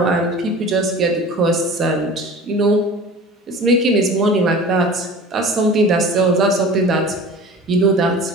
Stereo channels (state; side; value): normal; both; correlation 0.39